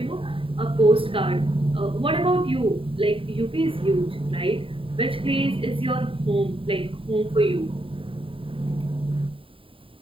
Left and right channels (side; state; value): left; late; 0.26 ms